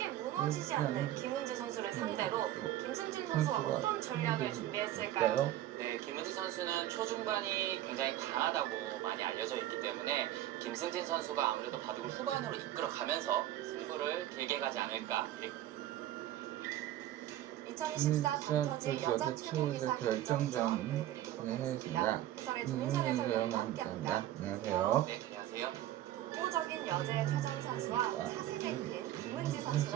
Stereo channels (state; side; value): quieter; left; 13.4 dB